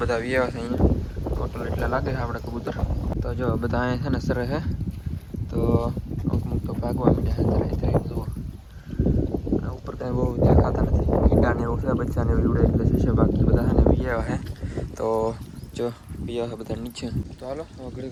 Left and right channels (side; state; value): both; identical; correlation 1.00